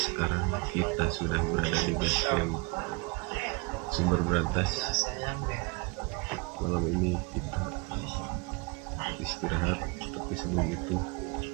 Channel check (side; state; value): left; quieter; 27.5 dB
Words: kita sudah berada di base camp Sumber Berantas. Malam ini kita istirahat, tapi sebelum itu